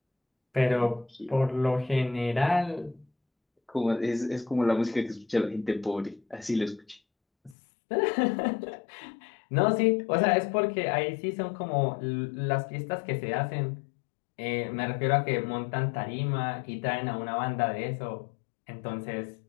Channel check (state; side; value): drops out; right; at 7.6 s